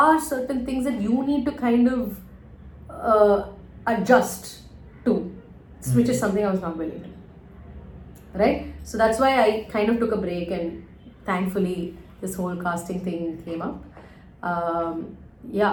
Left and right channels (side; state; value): both; identical; correlation 1.00